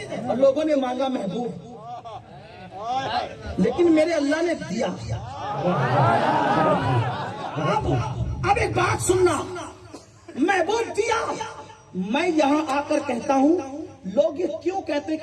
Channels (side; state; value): both; identical; correlation 1.00